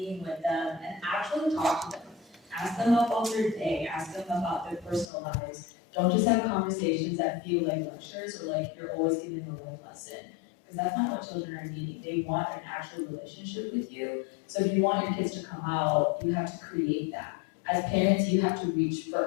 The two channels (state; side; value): drops out; right; at 5.1 s